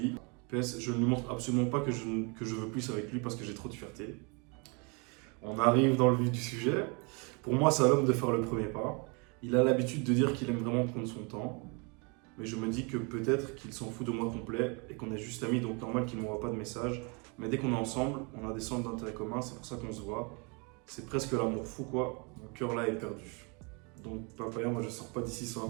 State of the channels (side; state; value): left; quieter; 32.2 dB